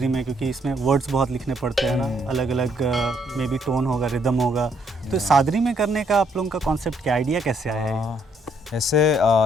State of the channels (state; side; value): normal; both; correlation 0.70